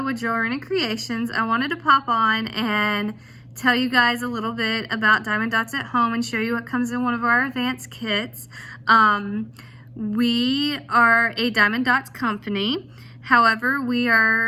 with Jewelry and Creations. I wanted to pop on and tell you guys a little bit about Diamond Dots at Home and show you what comes in one of our advanced kits. We are a Diamond Dots company. However, we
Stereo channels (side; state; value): both; identical; correlation 1.00